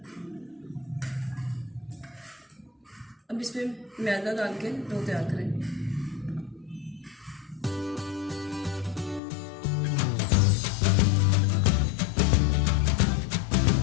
अब इसमें मैदा डाल के डो तैयार करें।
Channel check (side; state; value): right; drops out; at 9.2 s